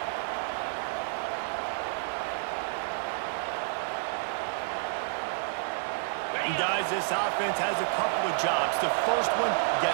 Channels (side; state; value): left; silent; 58 dB below the other